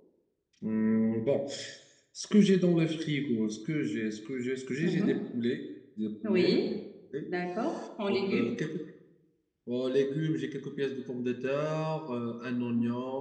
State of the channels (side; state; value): both; identical; correlation 1.00